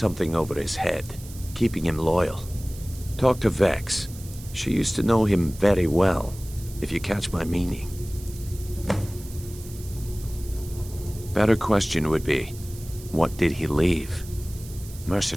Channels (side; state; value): right; noise; hiss, 18 dB below the sound